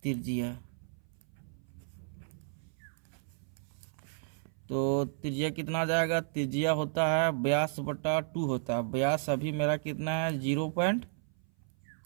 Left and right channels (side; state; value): left; silent; 56 dB below the other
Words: त्रिज्या, तो त्रिज्या कितना आ जाएगा, त्रिज्या होता है व्यास बटा 2 होता है। व्यास अभी मेरा कितना है